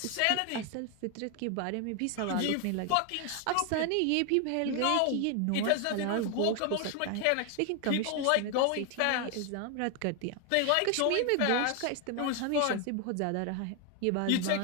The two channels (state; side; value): different; both; correlation 0.01